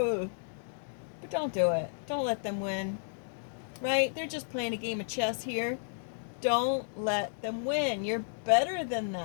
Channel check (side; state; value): right; silent; digital silence